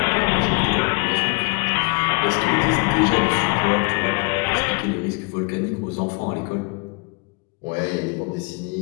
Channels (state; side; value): quieter; right; 30.8 dB